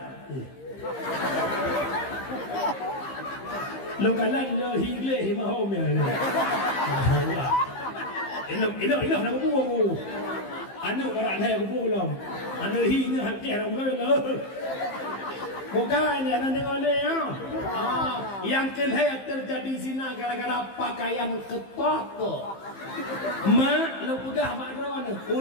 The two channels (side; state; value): right; late; 15 ms